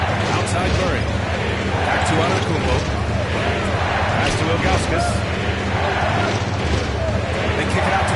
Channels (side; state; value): both; identical; correlation 1.00